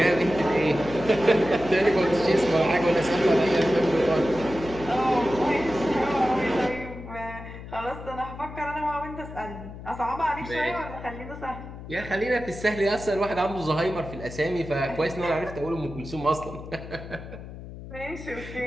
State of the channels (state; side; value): noise; left; hum, 12 dB below the sound